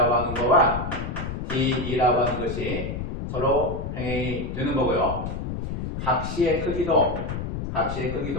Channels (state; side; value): noise; left; rumble, 5 dB below the sound